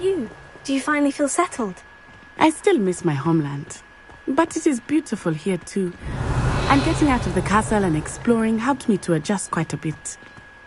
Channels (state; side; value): identical; both; correlation 1.00